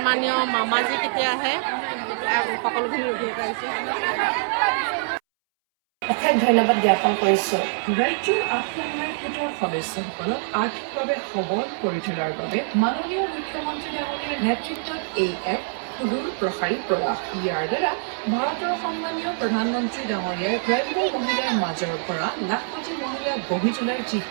মামাজী কেতিয়া আহে সকলোখিনি ৰখি পাইছে অশেষ ধন্যবাদ জ্ঞাপন কৰিছোঁ। ৰাজ্যৰ আত্মসহায়ক গোটৰ সদস্যসকলক আৰ্থিকভাৱে সবল কৰি তোলাৰ বাবে মাননীয় মুখ্যমন্ত্ৰী ডাঙৰীয়াৰ নেতৃত্বত এই এক সুদূৰ প্ৰসাৰী প্ৰয়াস। ইয়াৰ দ্বাৰা ভাৰতৰ সন্মানীয় প্ৰধানমন্ত্ৰী ডাঙৰীয়াৰ গ্ৰাম্য মহিলাৰ মাজৰ পৰা লাখপতি মহিলা গঢ়ি তোলাৰ যি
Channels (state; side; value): silent; left; 62 dB below the other